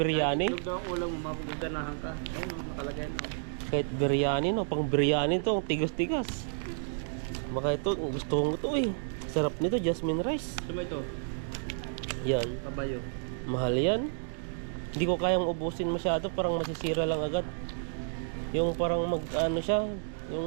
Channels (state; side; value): silent; left; digital silence